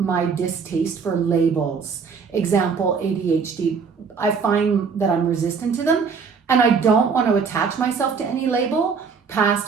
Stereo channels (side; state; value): left; quieter; 5.7 dB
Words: distaste for labels. Example, ADHD. I find that I'm resistant to them and I don't want to attach myself to any label,